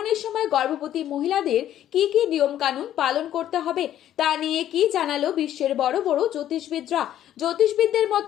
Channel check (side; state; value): right; quieter; 11.6 dB